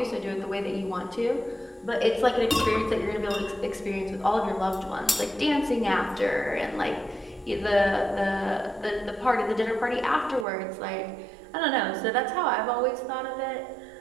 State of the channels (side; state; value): left; drops out; at 10.5 s